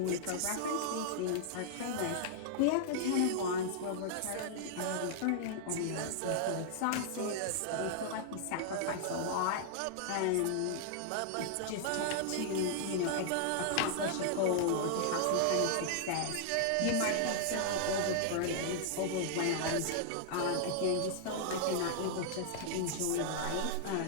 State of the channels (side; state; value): both; different; correlation -0.01